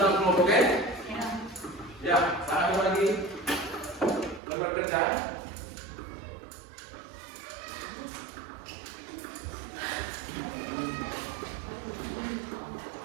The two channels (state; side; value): drops out; left; at 4.4 s